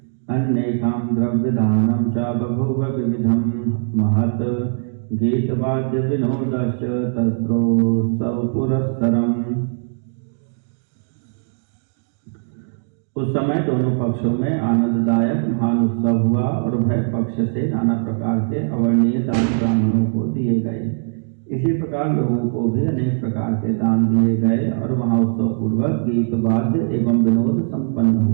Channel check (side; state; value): left; silent; digital silence